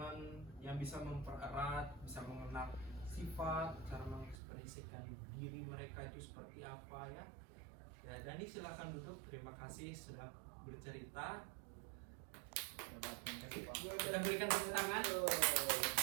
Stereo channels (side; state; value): left; drops out; at 4.4 s